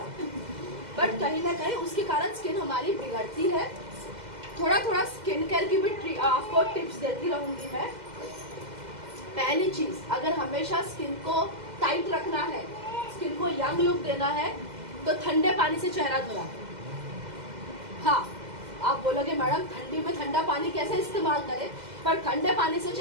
बट कहीं ना कहीं उसके कारण स्किन हमारी बिगड़ती है। थोड़ा थोड़ा स्किन केयर की भी आपको टिप्स देती रहूंगी मैं। पहली चीज, अगर हमेशा स्किन को टाइट रखना है, स्किन को यंग लुक देना है, तो ठंडे पानी से चेहरा धोना है। हाँ, आप बोलोगे मैडम ठंडी में ठंडा पानी कैसे इस्तेमाल करें, पर ठंडे पानी से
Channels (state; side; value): late; left; 2.0 ms